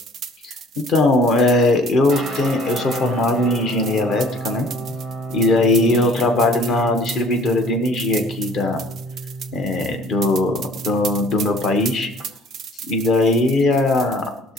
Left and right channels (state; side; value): normal; both; correlation 0.53